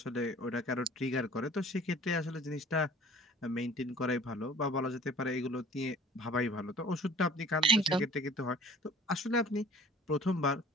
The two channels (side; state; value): both; normal; correlation 0.48